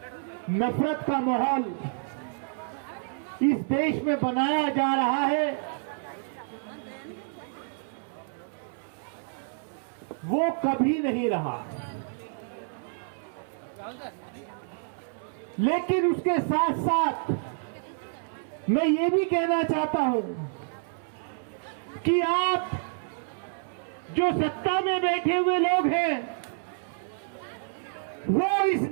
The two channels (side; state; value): left; silent; 59 dB below the other